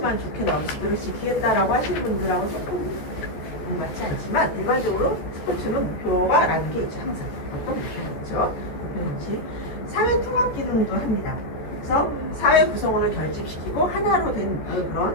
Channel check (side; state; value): right; late; 14 ms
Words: 좋게 나오면 그대로 지키겠다라고 하시는 분들하고 조금 맞지 않지만 일반적으로 스포츠는 목표가 라는 게 있죠. 항상 어떤 목표가 있죠. 목표는 사회 통합 기능도 합니다. 그래서 사회 구성원을 결집시키고 하나로 된